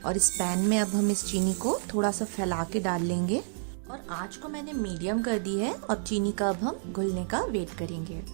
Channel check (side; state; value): left; silent; 58 dB below the other